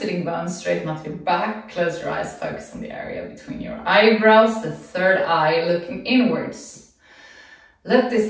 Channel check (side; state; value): both; identical; correlation 1.00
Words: bones, straighten out your back, close your eyes, focus on the area between your eyebrows, the third eye looking inwards. Let